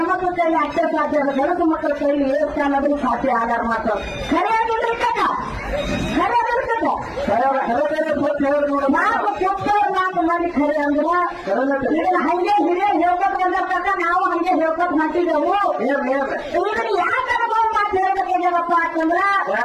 ಕೈಲಿ ಅಷ್ಟೇ ಸಾಧ್ಯ ಅದ. ಗಣಸು ಮಕ್ಕಳ ಕೈಲಿ ಏರ್ತಾ ಅನ್ನೋದು ಸಾಧ್ಯ ಆಗಾರ ಮಾತು ಖರೆ ಆಗಿಲ್ರಿ ಕಕ್ಕ ಖರೆ ಆಗಿರ್ತದ. ನಾವು ಕೊಟ್ಟವ್ರು 4 ಮಂದಿ ಖರೆ ಅಂದ್ರ ಇದನ್ನ ಹಂಗೆ ಹಿರಿಯ ಹೇಳ್ಕೊಟ್ ಬಂದಿರ್ತಾರ ನಾವು ಹಂಗೆ ಹೇಳ್ಕೊಟ್ ಮಾಡ್ತಿದ್ದೆವು. ಇದನ್ನ ಯಾಕೆ ಅನುಭವ ಮಾತು ಹೇಳ್ಬೇಕಾಗ್ಯಾವಪ್ಪ ಅಂತಂದ್ರ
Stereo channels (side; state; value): both; identical; correlation 1.00